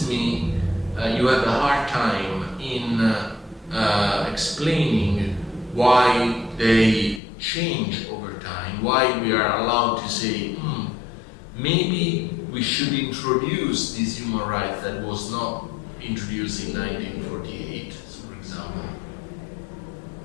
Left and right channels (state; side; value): drops out; right; at 7.2 s